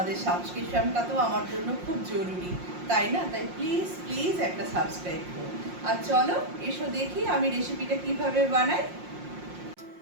সাবস্ক্রিপশনটা তো আমার জন্য খুব জরুরি, তাই না? তাই প্লিজ প্লিজ একটা সাবস্ক্রাইব করো। আর চলো এসো দেখি আমি রেসিপিটা কিভাবে বানাই।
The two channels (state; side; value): late; left; 5.6 ms